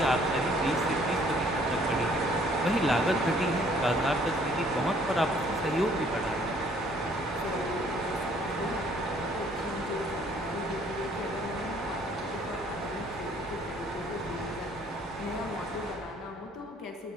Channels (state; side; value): normal; both; correlation 0.60